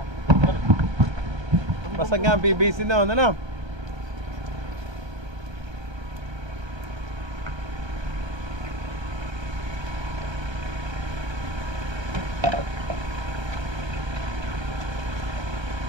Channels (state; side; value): late; left; 1.3 ms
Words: Basag nga ang PVC na, ano?